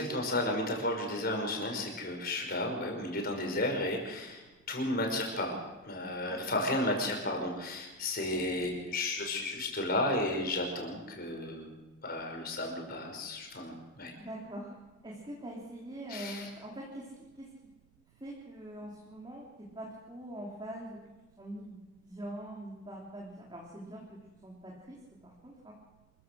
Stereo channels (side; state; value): right; noise; rumble, 30 dB below the sound